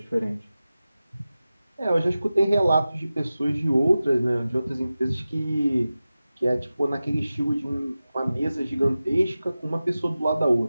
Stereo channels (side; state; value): both; inverted; correlation -0.95